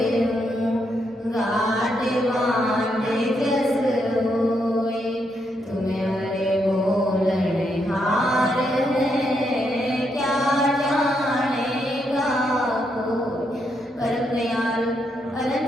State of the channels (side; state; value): both; normal; correlation 0.79